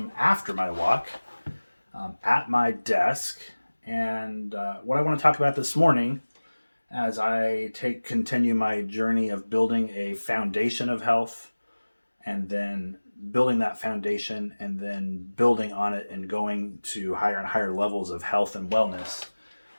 after my walk at my desk. And what I want to talk about this morning as I continue my journey of building a foundation of health and then building that foundation and then building on it and going to higher and higher levels of health and wellness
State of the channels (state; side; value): inverted; both; correlation -1.00